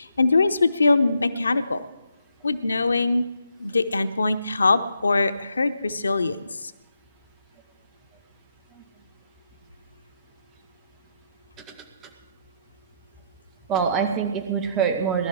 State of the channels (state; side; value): inverted; both; correlation -0.77